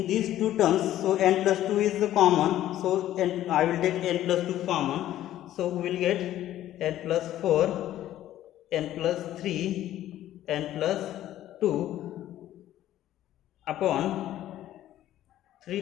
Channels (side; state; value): right; quieter; 13.1 dB